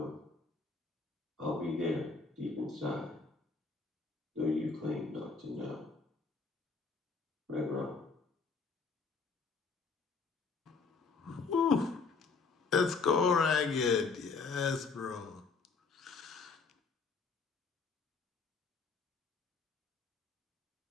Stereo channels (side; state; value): right; quieter; 4.7 dB